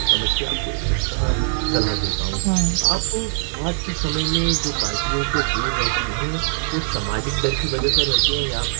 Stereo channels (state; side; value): silent; left; digital silence